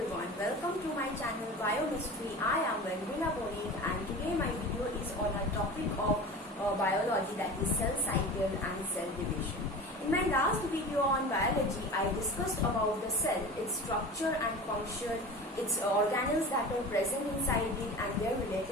welcome to my channel Biomystery. I am Vendrina Boning and today my video is on a topic of biology, that is cell cycle and cell division. In my last video on biology, I discussed about the cell, its structure and function, its organelles that are present inside it and their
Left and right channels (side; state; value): both; normal; correlation 0.34